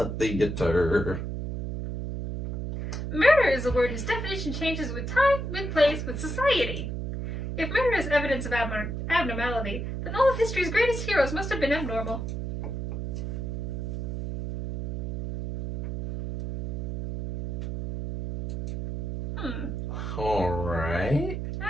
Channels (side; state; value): right; noise; hum, 4 dB below the sound